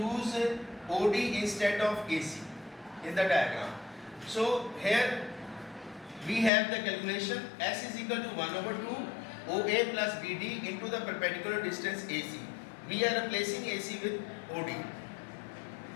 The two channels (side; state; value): right; drops out; at 6.5 s